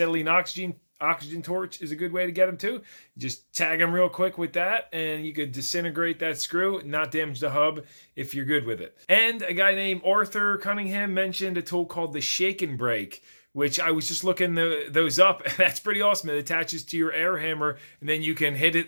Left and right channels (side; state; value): both; inverted; correlation -1.00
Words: oxygen torch is a good way to get them too. Just tag them real quick with that, and you could disintegrate that screw, not damage the hub if you're good with it. And a guy named Arthur Cunningham mentioned a tool called the Shake and Brake, which I was just looking those up, and that's pretty awesome. It attaches to your air hammer, and then you can hit it